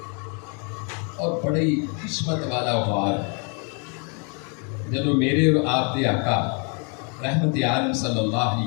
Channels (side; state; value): right; quieter; 37.8 dB